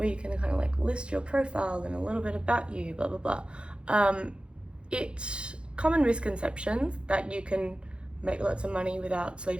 you can kind of like list your profile and a little bit about you, blah, blah, blah. It's common misconceptions that you can make lots of money without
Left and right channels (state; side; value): late; left; 0.056 ms